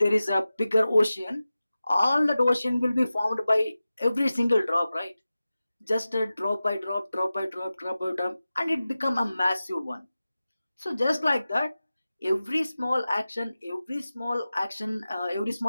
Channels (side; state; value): both; inverted; correlation -0.95